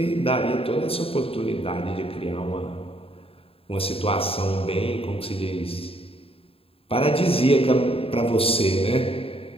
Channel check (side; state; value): right; late; 0.27 ms